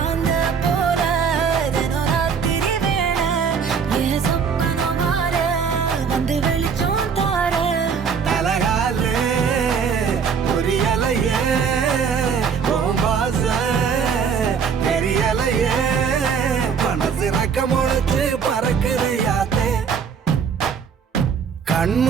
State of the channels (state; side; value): quieter; left; 6.4 dB